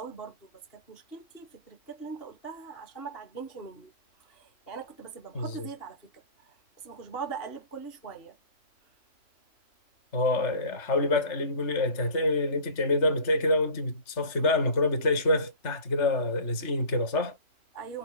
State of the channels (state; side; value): late; right; 3.3 ms